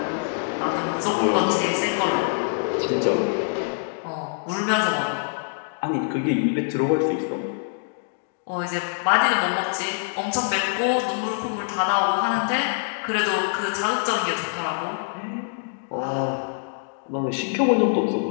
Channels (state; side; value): silent; right; digital silence